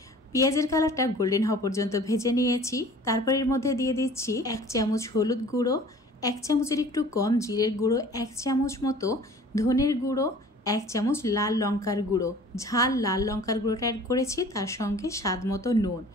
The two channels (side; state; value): both; normal; correlation 0.47